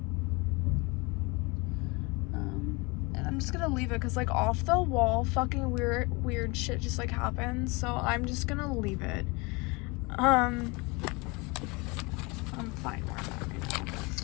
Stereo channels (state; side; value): quieter; right; 27.1 dB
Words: And I'm just gonna leave it because like off the wall fucking weird shit just like happens, so I'm just gonna leave it. I'm fine where I'm at right now.